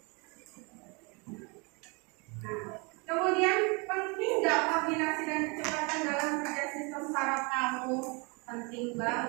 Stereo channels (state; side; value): quieter; left; 30.7 dB